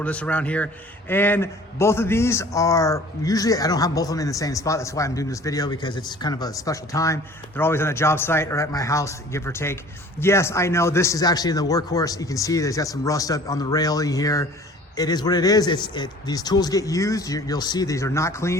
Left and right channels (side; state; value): both; normal; correlation 0.48